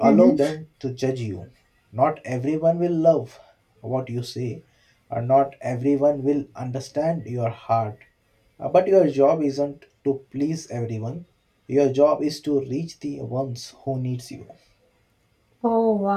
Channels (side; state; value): both; identical; correlation 1.00